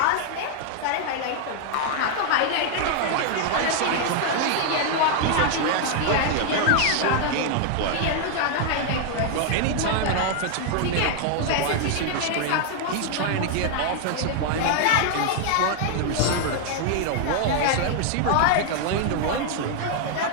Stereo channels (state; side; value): different; both; correlation 0.00